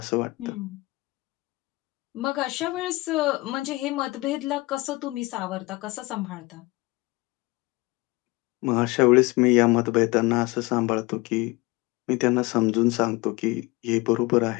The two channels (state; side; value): quieter; right; 22.7 dB